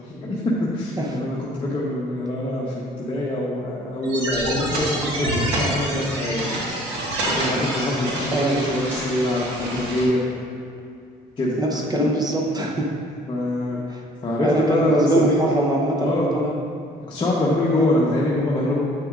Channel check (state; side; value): normal; both; correlation 0.55